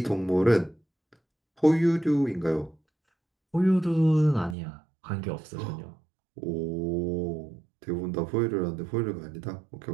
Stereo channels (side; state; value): left; drops out; at 4.5 s